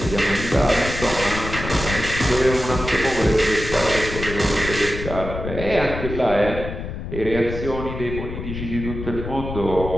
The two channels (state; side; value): noise; left; rumble, 7 dB below the sound